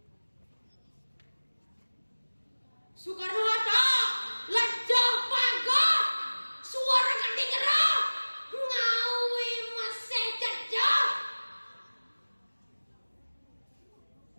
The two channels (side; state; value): both; inverted; correlation -1.00